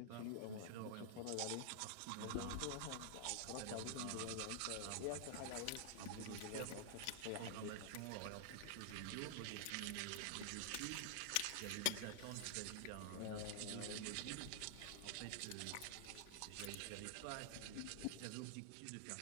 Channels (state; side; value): different; both; correlation -0.01